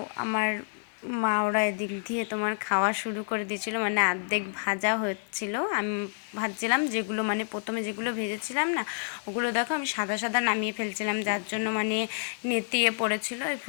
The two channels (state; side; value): silent; right; digital silence